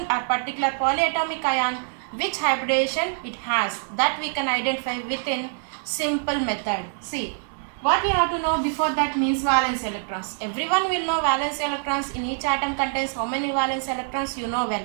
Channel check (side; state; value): left; silent; 62 dB below the other